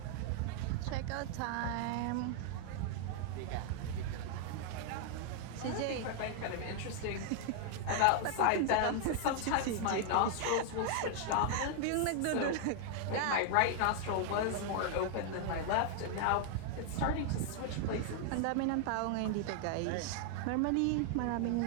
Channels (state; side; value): different; both; correlation 0.00